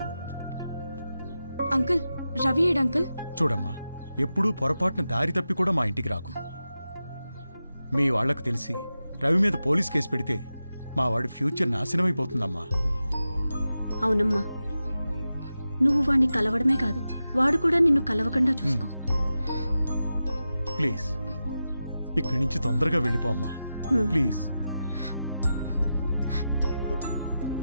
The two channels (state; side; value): inverted; both; correlation -0.92